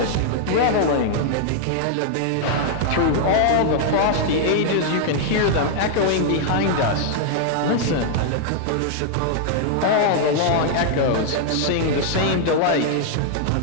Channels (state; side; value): different; both; correlation -0.01